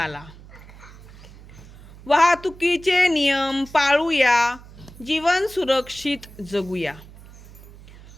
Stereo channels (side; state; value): right; noise; hum, 20 dB below the sound